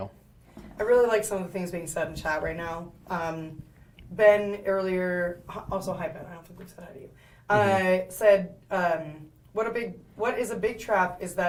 really like some of the things being said in chat right now. Ben earlier, also hi Ben, I don't think we've said hi to you, said, what is a big trap is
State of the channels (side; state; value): both; identical; correlation 1.00